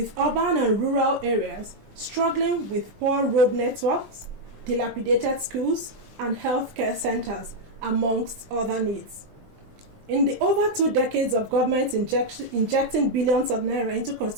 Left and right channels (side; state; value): left; late; 20 ms